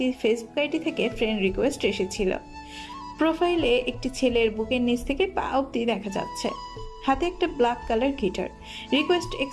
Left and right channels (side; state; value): both; identical; correlation 1.00